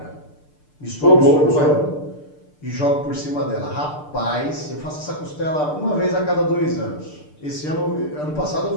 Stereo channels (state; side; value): late; right; 6.7 ms